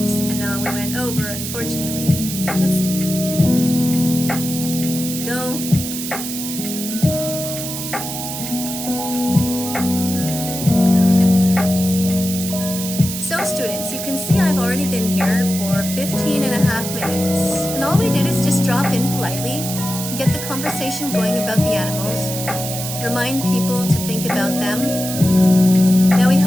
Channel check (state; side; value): noise; right; hiss, 6 dB below the sound